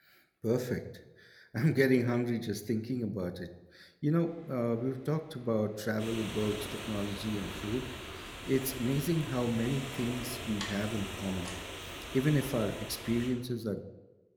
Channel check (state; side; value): identical; both; correlation 1.00